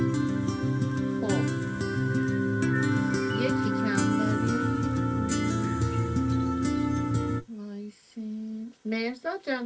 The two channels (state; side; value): identical; both; correlation 1.00